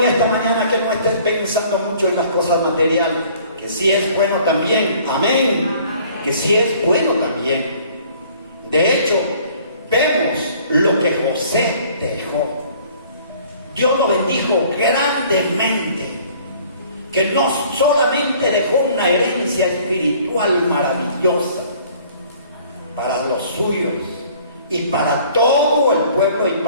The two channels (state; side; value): inverted; both; correlation -0.55